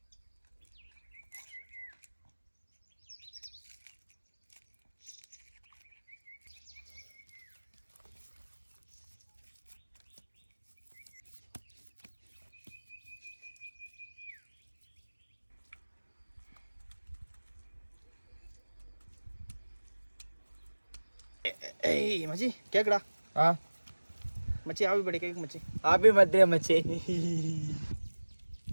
ஏய் மச்சி கேக்குடா? மச்சி ஹாப்பி பர்த்டே கேக் மச்சி. ஹாப்பி பர்த்டே மச்சி.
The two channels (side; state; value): both; inverted; correlation -1.00